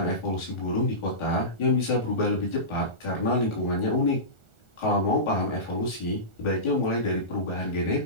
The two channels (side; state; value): right; late; 1.4 ms